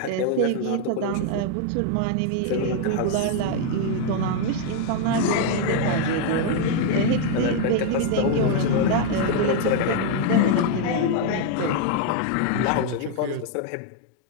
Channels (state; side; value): different; both; correlation 0.00